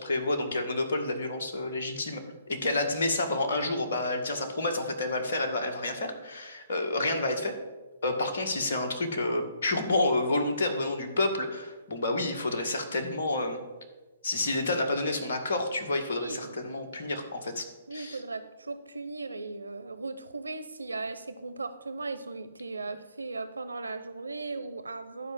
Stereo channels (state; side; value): inverted; both; correlation -0.69